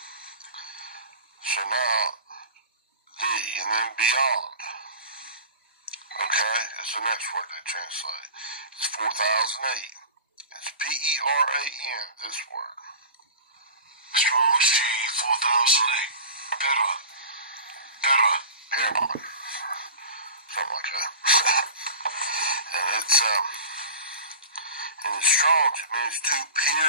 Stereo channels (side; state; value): both; inverted; correlation -0.36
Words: So now, thee, and then beyond. Okay, it's the next word they translate. It's 4008. It's P-E-R-A-N, this word. Strong's G 4008. Better. Paramount. Something like that. And it's, in the Strong's, it means to